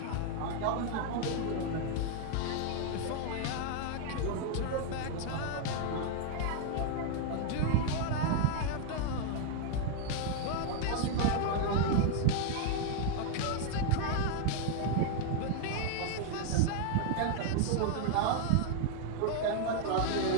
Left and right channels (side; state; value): both; different; correlation 0.00